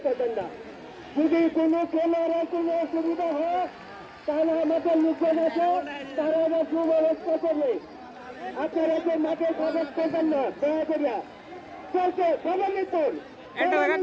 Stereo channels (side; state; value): both; identical; correlation 1.00